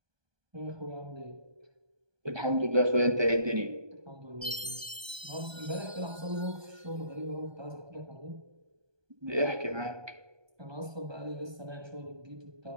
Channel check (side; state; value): left; late; 1.2 ms